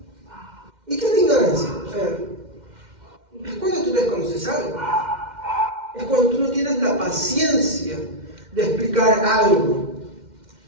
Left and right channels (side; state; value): left; late; 2.1 ms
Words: ¿Y qué es la ignorancia? Es cuando tú desconoces algo. Es cuando tú no tienes la paciencia de explicar algo.